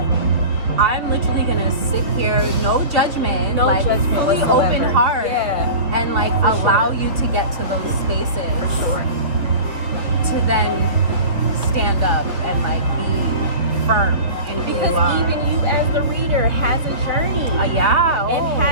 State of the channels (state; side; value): late; left; 2.8 ms